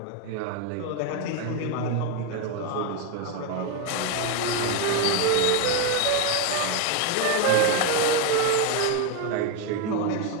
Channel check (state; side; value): different; both; correlation 0.01